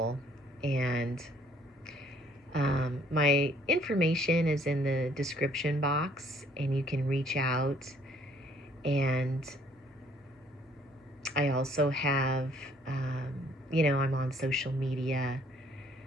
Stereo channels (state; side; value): normal; both; correlation 0.62